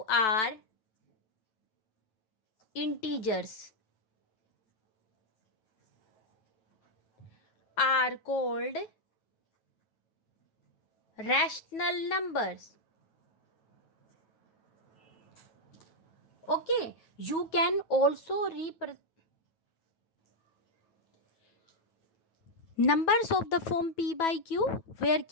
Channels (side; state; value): right; late; 9.2 ms